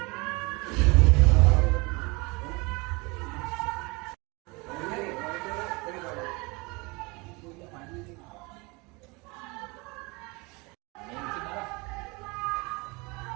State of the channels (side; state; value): left; quieter; 26.7 dB